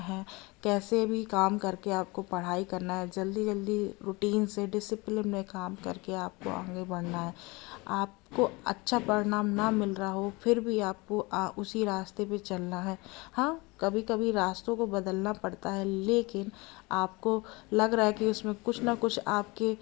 कैसे भी काम करके आपको पढ़ाई करना है, जल्दी जल्दी रूटीन से डिसिप्लिन में काम करके आपको आगे बढ़ना है। आपको अच्छा परिणाम ना मिल रहा हो फिर भी आपको उसी रास्ते पे चलना है। हाँ, कभी कभी रास्तों को बदलना पड़ता है, लेकिन आपको लग रहा है कि उसमें कुछ ना कुछ आपके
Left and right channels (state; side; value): quieter; right; 25.0 dB